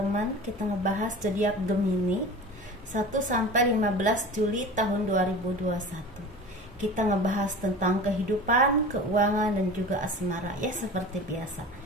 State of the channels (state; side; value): normal; both; correlation 0.36